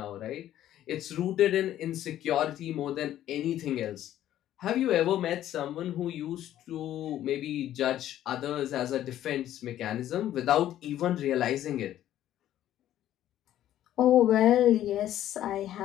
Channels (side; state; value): right; quieter; 12.3 dB